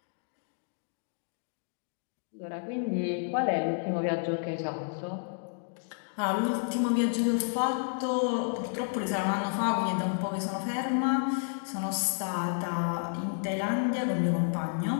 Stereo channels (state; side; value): silent; right; digital silence